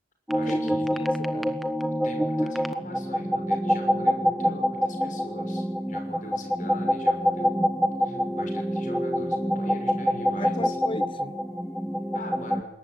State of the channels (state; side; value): normal; both; correlation 0.94